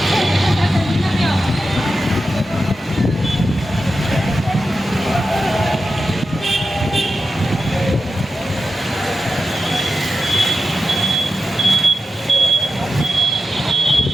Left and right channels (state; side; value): normal; both; correlation 0.91